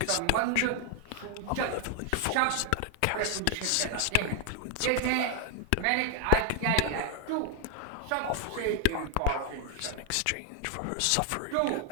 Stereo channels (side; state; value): both; different; correlation 0.00